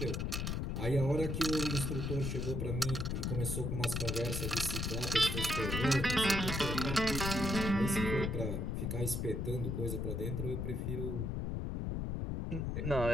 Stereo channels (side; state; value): left; noise; rumble, 1 dB below the sound